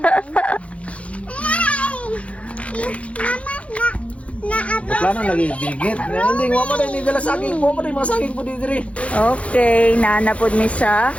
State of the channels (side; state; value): right; late; 0.063 ms